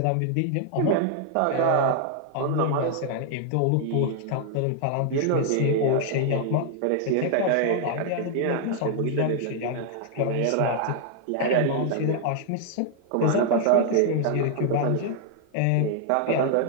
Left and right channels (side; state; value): both; different; correlation 0.00